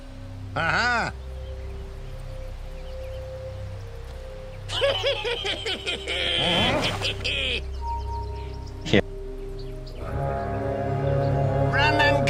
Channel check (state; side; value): identical; both; correlation 1.00